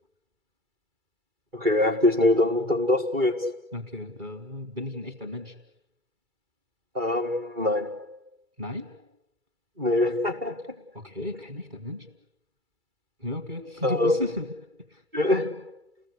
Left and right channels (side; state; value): left; late; 2.3 ms